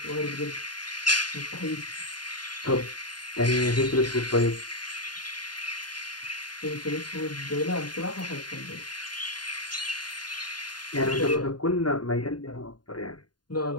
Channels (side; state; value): right; late; 0.70 ms